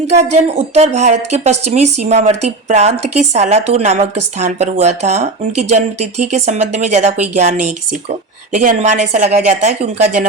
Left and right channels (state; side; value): quieter; left; 3.4 dB